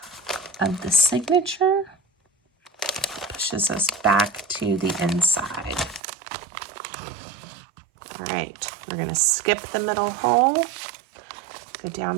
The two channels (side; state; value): left; drops out; at 6.0 s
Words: of the signature. Pushes us back to the inside. All right, we're going to skip the middle hole, go down